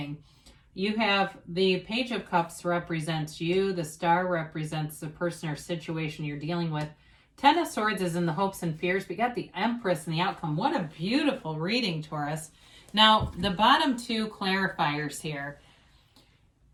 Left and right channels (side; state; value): both; identical; correlation 1.00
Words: You have the Page of Cups represents you. The Star represents the person or situation you're dealing with. Ten of Swords is in the hopes and fears. We got the Empress and the outcome. What a beautiful reading, Taurus. Now, the bottom two clarifiers here.